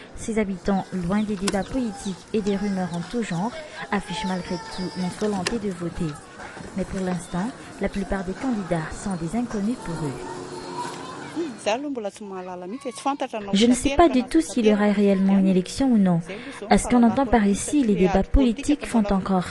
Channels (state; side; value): identical; both; correlation 1.00